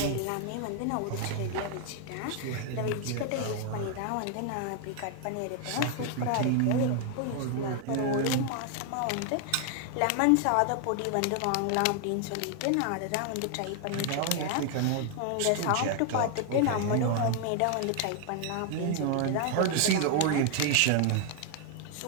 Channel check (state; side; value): different; both; correlation 0.00